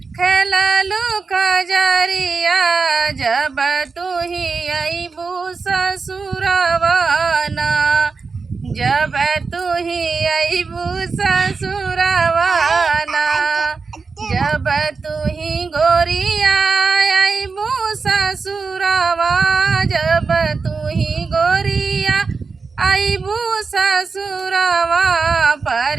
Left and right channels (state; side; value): quieter; left; 4.7 dB